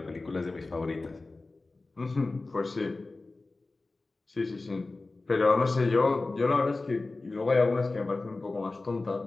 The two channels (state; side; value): quieter; right; 3.3 dB